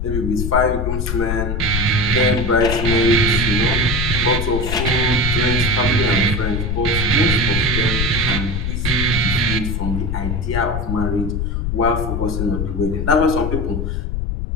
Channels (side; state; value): left; noise; rumble, 1 dB below the sound